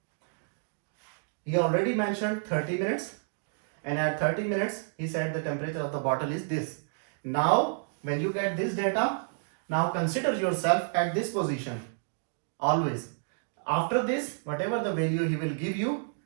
He already mentioned 30 minutes, and at 30 minutes he said the temperature of the bottle is this. Now when you get this data, now consider yourself at this position always. After this, whatever the value he will give you,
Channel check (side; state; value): left; silent; digital silence